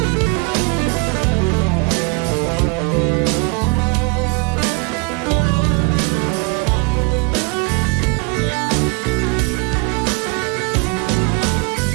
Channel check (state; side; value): quieter; left; 29.2 dB